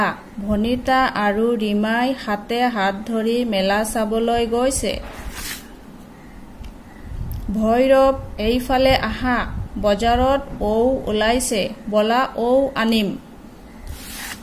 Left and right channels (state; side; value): identical; both; correlation 1.00